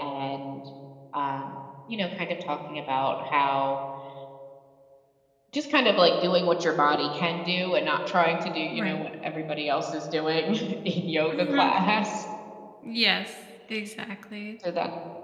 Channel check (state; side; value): identical; both; correlation 1.00